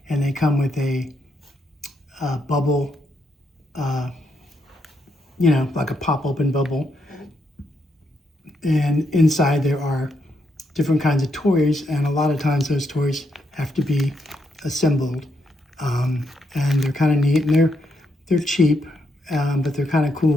and they come with a bubble, like a pop-open bubble, and inside there are different kinds of toys, and a lot of times those toys have to be assembled, and they're kind of neat, and they're cheap, but they're kind of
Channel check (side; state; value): both; normal; correlation 0.79